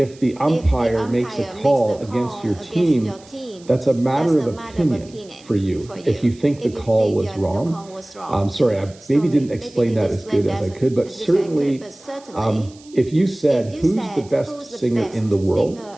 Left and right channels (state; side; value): noise; right; hiss, 25 dB below the sound